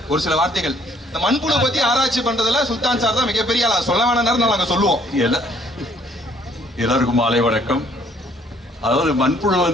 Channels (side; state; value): both; normal; correlation 0.63